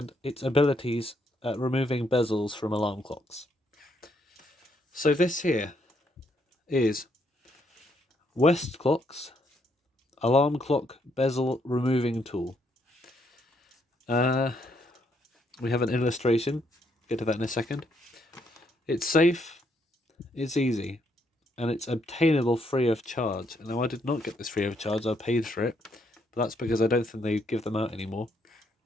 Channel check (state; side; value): normal; both; correlation 0.73